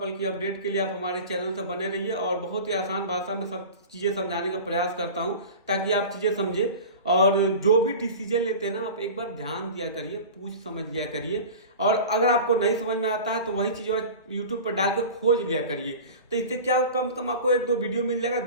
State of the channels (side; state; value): both; inverted; correlation -0.35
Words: की अपडेट के लिए आप हमारे चैनल से बने रहिए और बहुत ही आसान भाषा में सब चीजें समझाने का प्रयास करता हूँ ताकि आप चीजें समझे। और जो भी डिसीजन लेते हैं ना आप एक बार ध्यान दिया करिए, पूछ समझ लिया करिए। और अगर आपको नहीं समझ में आता है तो वही चीज यूट्यूब पर डाल के खोज लिया करिए। तो इससे क्या कम से कम आपको एक दो वीडियो मिल जाएगा,